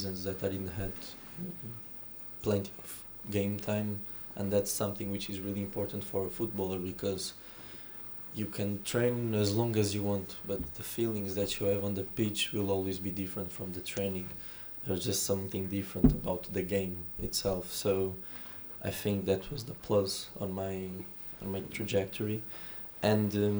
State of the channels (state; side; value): identical; both; correlation 1.00